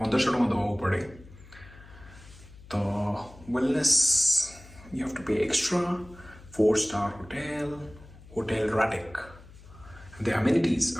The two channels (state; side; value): noise; left; hum, 20 dB below the sound